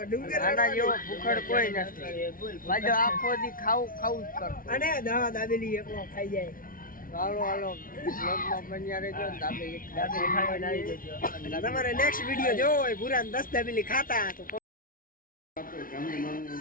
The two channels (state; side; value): late; right; 0.41 ms